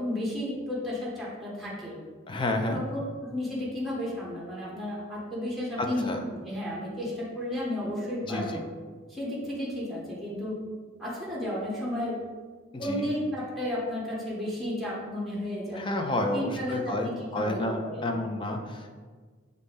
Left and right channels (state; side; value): normal; both; correlation 0.50